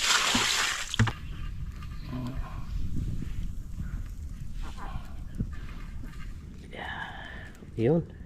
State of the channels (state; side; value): identical; both; correlation 1.00